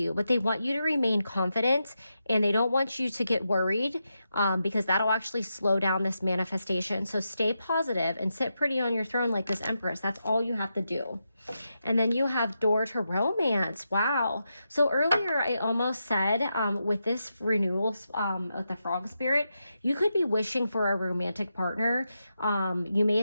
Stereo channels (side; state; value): both; inverted; correlation -0.86